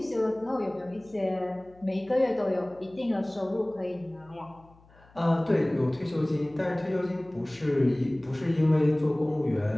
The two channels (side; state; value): left; noise; hum, 27 dB below the sound